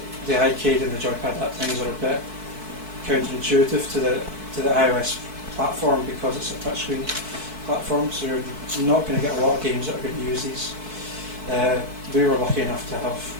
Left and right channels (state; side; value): late; left; 4.6 ms